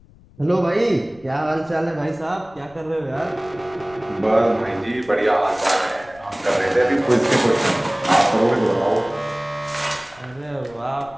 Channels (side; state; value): left; noise; rumble, 26 dB below the sound